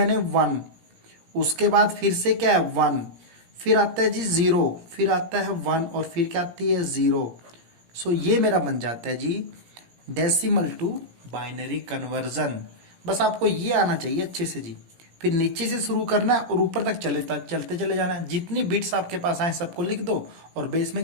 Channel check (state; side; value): late; left; 17 ms